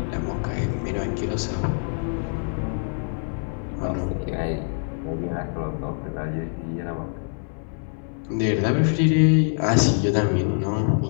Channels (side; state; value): right; silent; 62 dB below the other